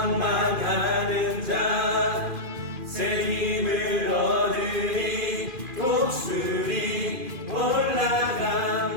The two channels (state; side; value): late; left; 2.4 ms